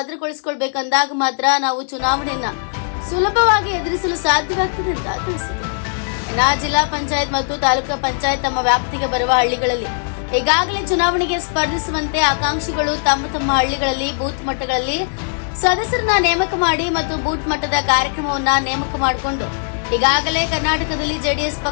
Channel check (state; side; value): silent; right; digital silence